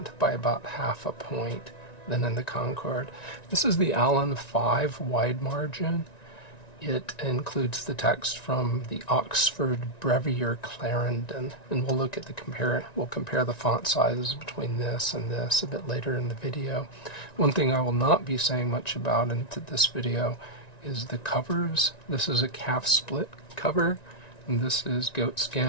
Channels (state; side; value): late; right; 1.9 ms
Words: by about half a point than in the Concord. This is the Allan 5 Wide Margin. It includes the text from the Oxford Brevier Clarendon, and we'll look at we'll compare the font sizes between this and this a bit later in the video. One thing I will not be saying much about into this video is the covers. This is a calf split cover, and this is goat